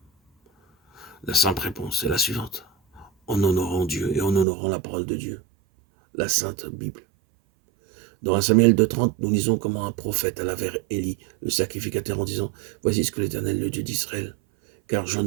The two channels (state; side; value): drops out; left; at 4.5 s